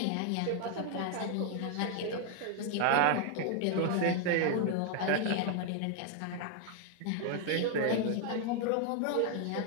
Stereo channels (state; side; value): different; both; correlation 0.00